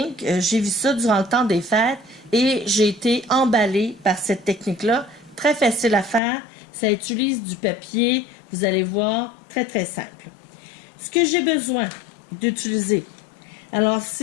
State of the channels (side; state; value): right; drops out; at 6.2 s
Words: J'ai vu ça durant le temps des fêtes et j'ai été emballée par cette technique-là. Très facile à faire. Ça utilise du papier, vous allez voir, très très simple. Ce que j'ai besoin d'utiliser, alors